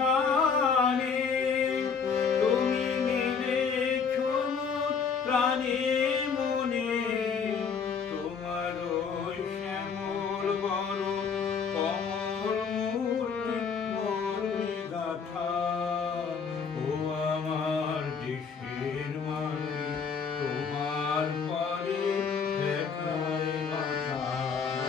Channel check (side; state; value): right; quieter; 6.0 dB